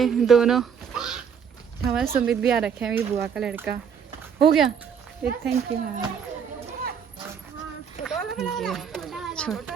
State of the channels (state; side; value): quieter; left; 7.2 dB